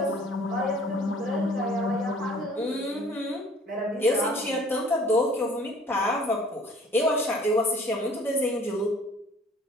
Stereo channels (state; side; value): normal; both; correlation 0.53